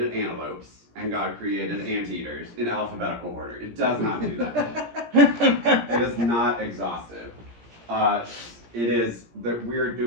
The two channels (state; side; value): late; left; 17 ms